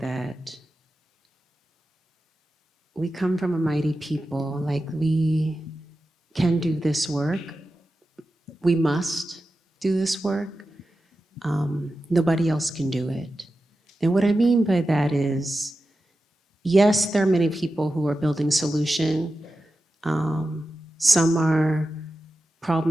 that we come from a mighty people. Like, we can do this work. We must do this work. Nobody else can do it. And what I mean by that is, yes, there are many people who are building solution. Some are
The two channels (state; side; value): normal; both; correlation 0.92